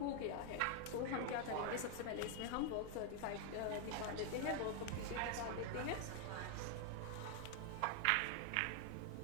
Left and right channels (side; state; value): both; different; correlation 0.00